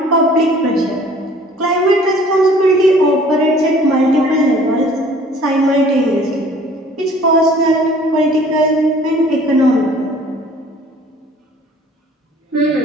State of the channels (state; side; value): normal; both; correlation 0.52